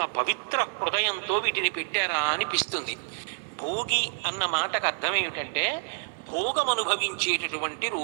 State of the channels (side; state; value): left; silent; digital silence